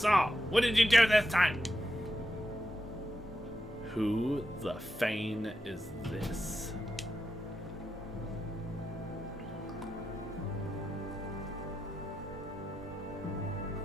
all. What did you do this time? Who the Fane is this?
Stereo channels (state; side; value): normal; both; correlation 0.87